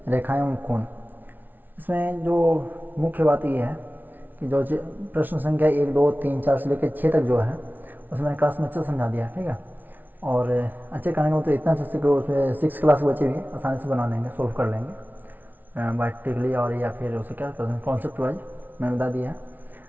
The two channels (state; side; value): late; left; 0.086 ms